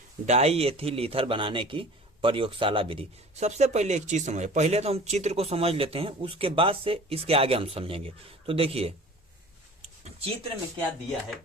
डाई एथिल ईथर बनाने की प्रयोगशाला विधि। सबसे पहले एक चीज समझे, पहले तो हम चित्र को समझ लेते हैं, उसके बाद से इसके आगे हम समझेंगे। तो देखिए चित्र में क्या दिया है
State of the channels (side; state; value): both; normal; correlation 0.43